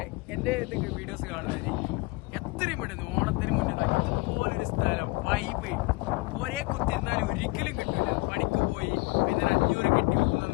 എന്റെ വീഡിയോസ് കാണുന്നവര് എത്രയും പെട്ടെന്ന് ഓണത്തിന് മുന്നേ ഇതുപോലൊരു സ്ഥലം വൈബ് ഒരേ കുത്തിരുന്നാലും ഒരിക്കലും കിട്ടില്ല. പണിക്ക് പോയി പിന്നെ 500 കിട്ടി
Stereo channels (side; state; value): right; quieter; 24.8 dB